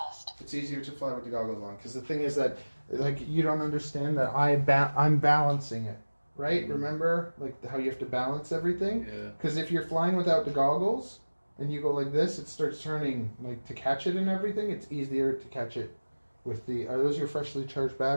It's easier to fly with the goggles on because the thing is that, like, you don't understand that I'm balancing it, right? Remember, like how you have to balance everything. Yeah. Because if you're flying without the goggles and you go like this, it starts turning like to catch it and everything. It's easier to catch it with the. Are those your freshly charged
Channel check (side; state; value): both; inverted; correlation -1.00